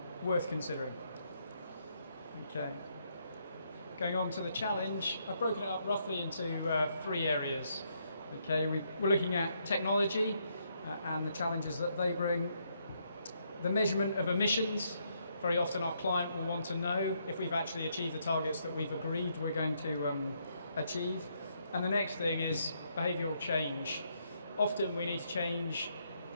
worth considering. Okay. Going on to the challenge, I've broken it up roughly into 3 areas. Okay, we're looking at technology and the challenges that they bring. The measurement of emissions. Very often our client will want to know if we've actually achieved the targets that we've agreed we're going to achieve. And the next thing is behavioural change. Often we need to change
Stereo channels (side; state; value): both; inverted; correlation -0.74